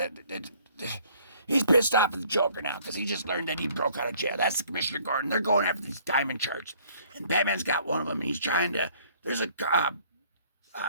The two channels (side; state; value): both; inverted; correlation -0.58